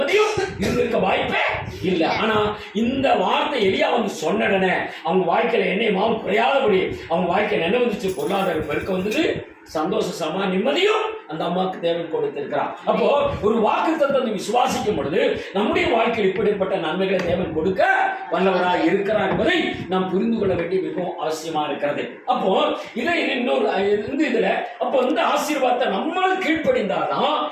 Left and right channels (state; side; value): identical; both; correlation 1.00